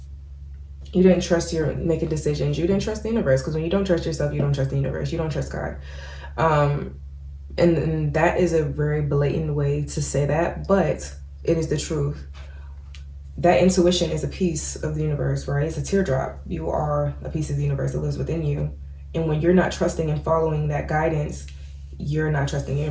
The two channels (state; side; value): identical; both; correlation 1.00